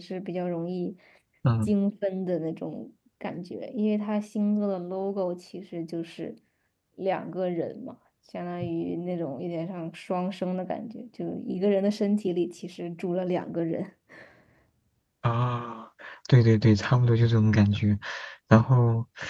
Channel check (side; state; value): both; identical; correlation 1.00